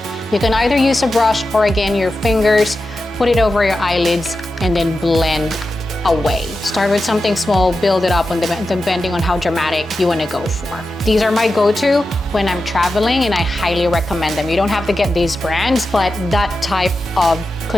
You can either use a brush or again your fingers, put it over your eyelids and then blend away. Start with something small, build it up depending on how dramatic you want to go for. These are my go-to when I'm traveling and I highly recommend them. You don't have to get these brands, but that type of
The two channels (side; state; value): both; normal; correlation 0.91